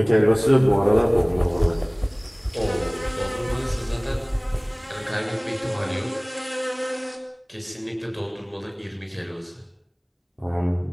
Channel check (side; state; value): both; identical; correlation 1.00